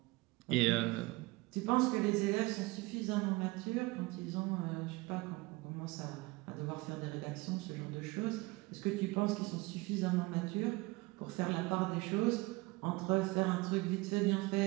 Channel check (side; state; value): left; quieter; 22.5 dB